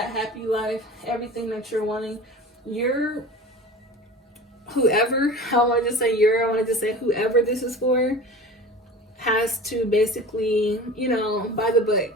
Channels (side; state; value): both; normal; correlation 0.37